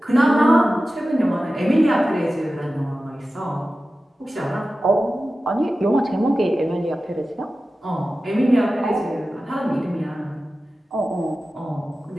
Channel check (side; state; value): both; normal; correlation 0.94